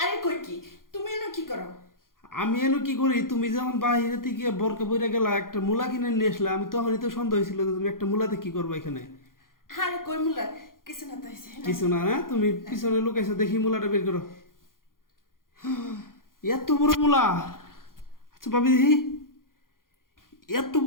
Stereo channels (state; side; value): late; right; 0.91 ms